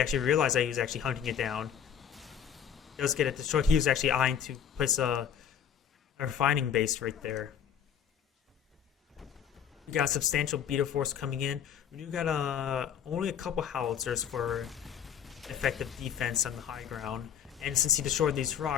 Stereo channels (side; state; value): right; quieter; 8.3 dB